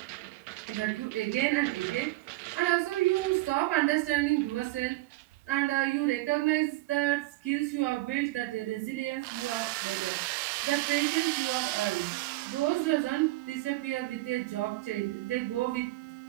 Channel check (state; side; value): quieter; left; 19.4 dB